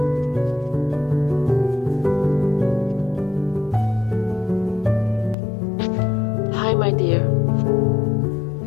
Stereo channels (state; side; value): drops out; right; at 5.4 s